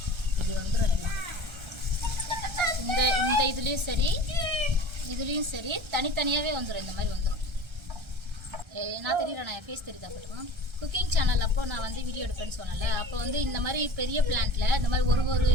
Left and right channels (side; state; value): left; late; 1.3 ms